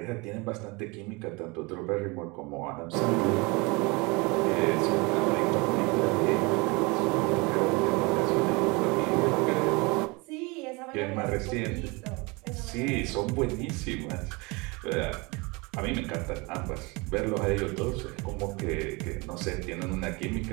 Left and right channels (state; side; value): quieter; left; 26.8 dB